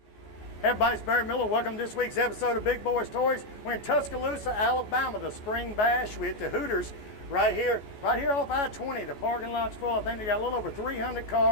Hey everybody, it's Barry Miller. Welcome to this week's episode of Big Boyz Toys. We're in Tuscaloosa, Alabama, the Spring Bash with the Hooters right here off I-20. The parking lot's full. I think they got a little over 300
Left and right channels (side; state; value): right; late; 14 ms